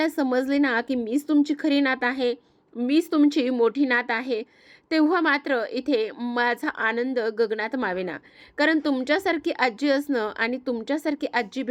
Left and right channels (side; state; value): both; identical; correlation 1.00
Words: समजले ना की मीच तुमची खरी नात आहे, मीच तुमची मोठी नात आहे, तेव्हा मात्र इथे माझा आनंद गगनात मावेना. कारण तुमच्यासारखी आजी असणं आणि तुमच्यासारखी आजी